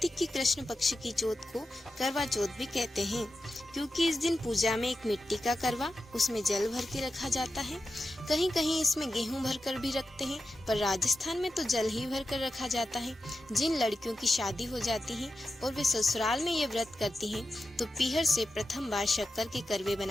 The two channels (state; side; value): normal; both; correlation 0.90